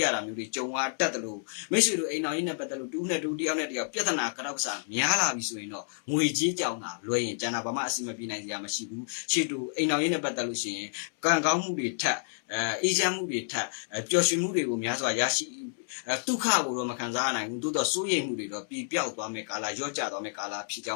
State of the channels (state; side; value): silent; right; 57 dB below the other